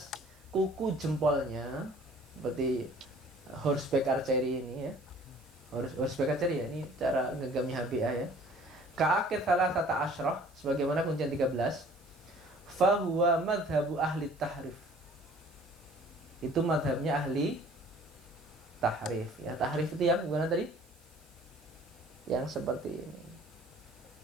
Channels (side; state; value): right; noise; hiss, 29 dB below the sound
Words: kuku jempolnya, seperti horseback archery ini ya. Horseback archery ya, ini cara ngegami HBA ya. Ka'akid thalathata asyrah, sebagaimana kuncian 13. Fahuwa madhabu ahli tahrif, itu madhabnya ahli tahrif ya. Tahrif itu yang gimana tadi? Yang seperti ini.